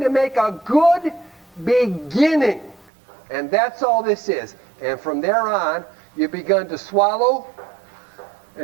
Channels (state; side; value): drops out; left; at 2.9 s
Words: to make a good beginning. And that's all this is. And from there on, you've begun to swallow